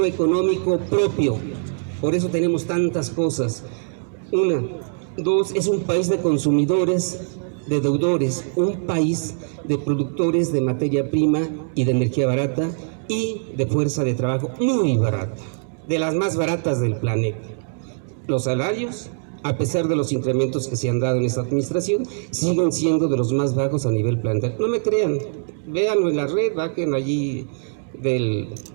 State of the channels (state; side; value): silent; left; digital silence